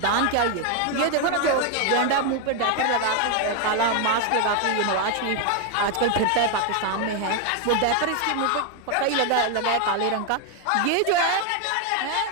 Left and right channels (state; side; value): different; both; correlation 0.01